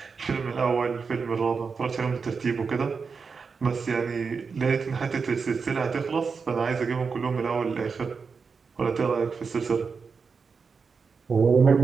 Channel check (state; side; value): quieter; left; 5.2 dB